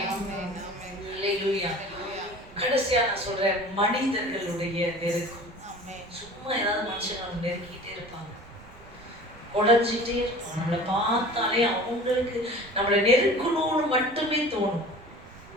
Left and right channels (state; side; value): noise; right; rumble, 22 dB below the sound